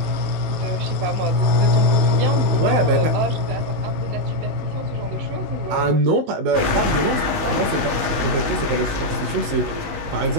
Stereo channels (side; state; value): left; late; 19 ms